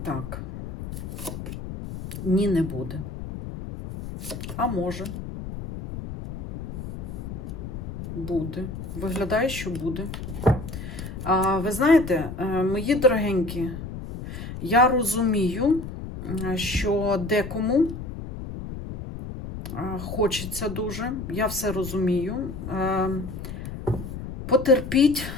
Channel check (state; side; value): noise; left; rumble, 8 dB below the sound